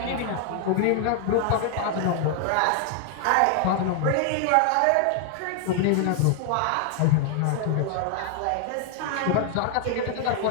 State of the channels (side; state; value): both; different; correlation 0.00